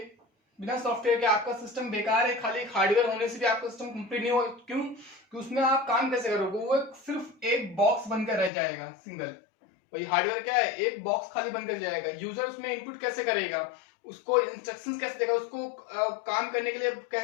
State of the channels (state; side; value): drops out; right; at 8.5 s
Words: के आपका सिस्टम बेकार है। खाली एक हार्डवेयर होने से भी आपका सिस्टम कंप्लीट नहीं होगा। क्यों? कि उसमें आप काम कैसे करोगे, वो सिर्फ एक बॉक्स बनकर रह जाएगा, सिंगल। वही हार्डवेयर क्या है, एक बॉक्स खाली बनकर जाएगा। यूजर उसमें इनपुट कैसे करेगा, उसको इंस्ट्रक्शंस कैसे देगा, उसको काम करने के लिए